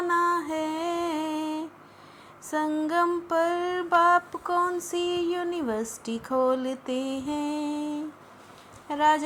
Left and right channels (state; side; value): identical; both; correlation 1.00